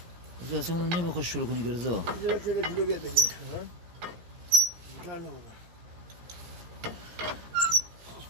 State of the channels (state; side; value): late; left; 17 ms